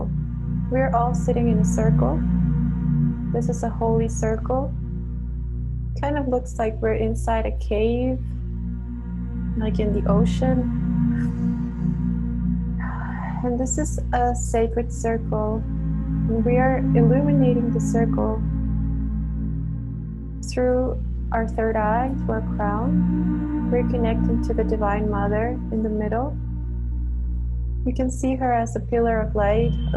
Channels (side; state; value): both; identical; correlation 1.00